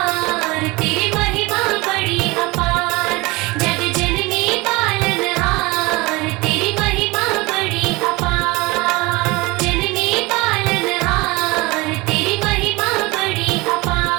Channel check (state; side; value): quieter; left; 23.3 dB